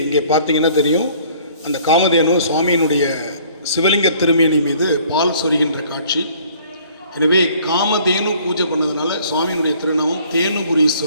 இங்கே பார்த்தீங்கன்னா தெரியும், அந்த காமதேனு சுவாமியினுடைய சிவலிங்க திருமேனி மீது பால் சொரிகின்ற காட்சி. எனவே காமதேனு பூஜை பண்ணதுனால சுவாமியினுடைய திருநாமம்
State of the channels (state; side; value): inverted; both; correlation -0.56